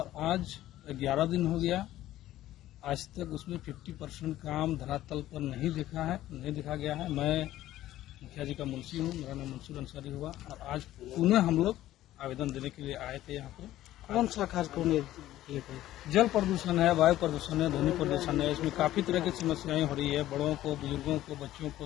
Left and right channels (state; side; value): quieter; right; 14.2 dB